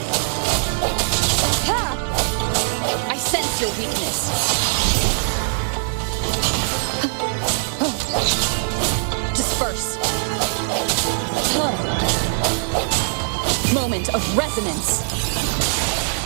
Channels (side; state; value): left; silent; 60 dB below the other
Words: I sense your weakness. Disperse. Moment of resonance.